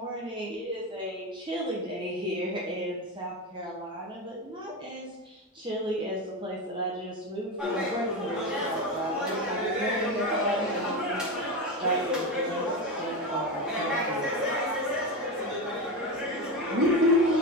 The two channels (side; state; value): both; normal; correlation 0.17